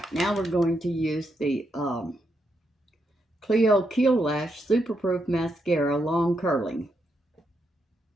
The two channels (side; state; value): both; normal; correlation 0.81